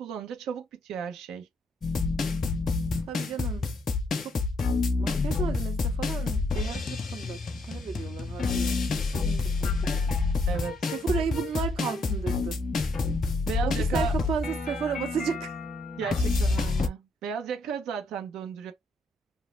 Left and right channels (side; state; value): both; normal; correlation 0.72